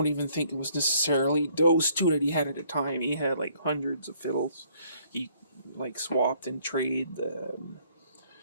even think it was necessarily those two that he had at the time. He had like hundreds of fiddles. He like swapped and traded.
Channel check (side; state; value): both; inverted; correlation -0.64